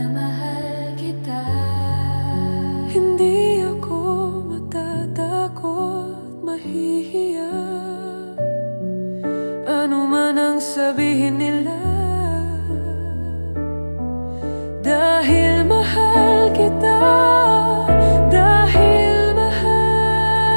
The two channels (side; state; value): both; inverted; correlation -1.00